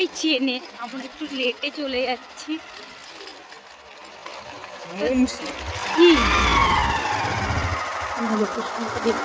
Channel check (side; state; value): both; identical; correlation 1.00